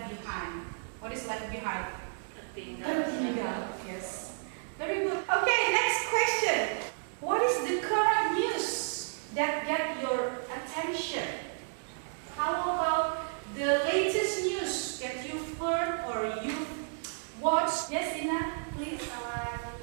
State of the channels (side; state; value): left; silent; digital silence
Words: behind. What is left behind? Tertinggal. Yes. Very good. Okay, next question. What is the current news that get your attention? How about the latest news that you've heard or you've watched? Yes, Ina, please.